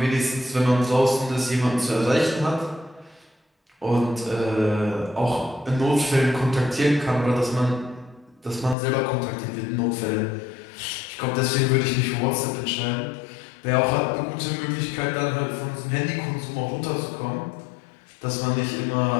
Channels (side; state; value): right; drops out; at 8.8 s